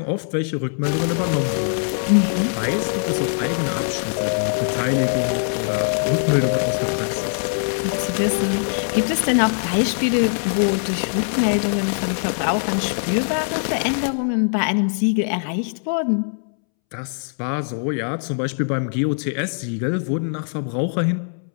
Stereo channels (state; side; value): silent; right; 64 dB below the other